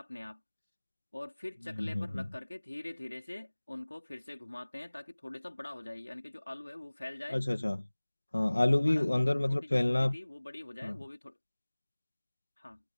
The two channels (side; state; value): both; inverted; correlation -1.00